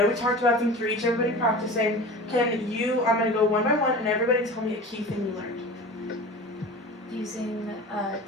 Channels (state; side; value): normal; both; correlation 0.35